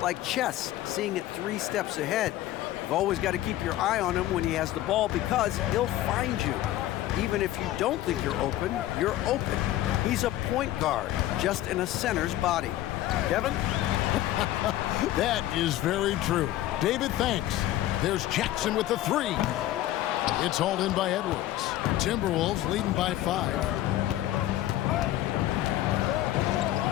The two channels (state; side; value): quieter; right; 14.3 dB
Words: like chess, seeing it 3 steps ahead. You've always got to keep your eye on him when he has the ball because he'll find you. Even if you don't think you're open, you're open. He's a point guard, just in a center's body. Kevin? That is very true. David, thanks. There's Jackson with the 3. It's hauled in by Edwards. Timberwolves leading by 5.